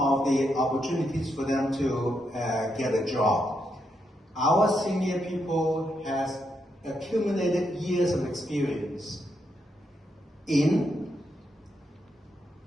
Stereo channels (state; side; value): normal; both; correlation 0.81